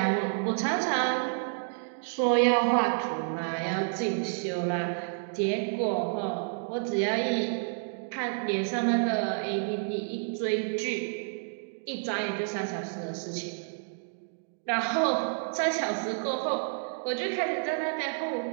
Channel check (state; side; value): silent; left; digital silence